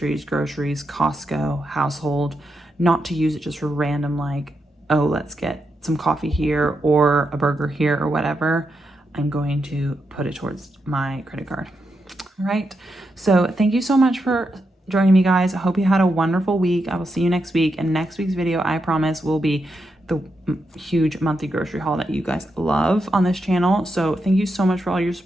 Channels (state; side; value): normal; both; correlation 0.84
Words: groceries, Costco, household, not to use it just for random, like, oh, let's get some coffee here or a burger here or whatever, I'm going to put it towards my credit card. All right. So thank you so much for joining me, guys. I hope you had a wonderful week. I will see you next week. And next week's video, I promise, will be the huge monthly grocery haul that you guys love on this channel. So thank you so much for all your